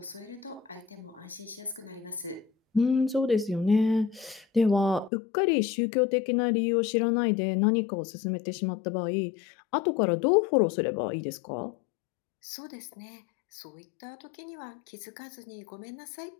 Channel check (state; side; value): drops out; right; at 5.1 s